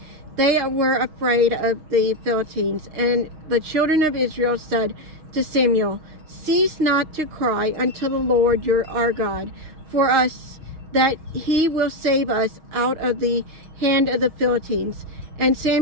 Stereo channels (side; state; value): left; late; 6.3 ms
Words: they were afraid of the Philistines. And the children of Israel said to Samuel, Cease not to cry unto the Lord our God for us, that he will save us out of the hand of the Philistines. And